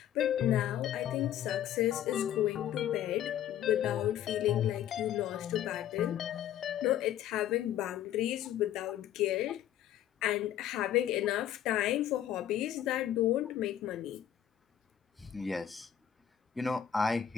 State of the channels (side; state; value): right; quieter; 10.8 dB